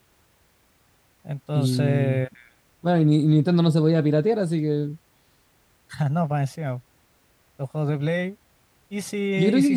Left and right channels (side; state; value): both; identical; correlation 1.00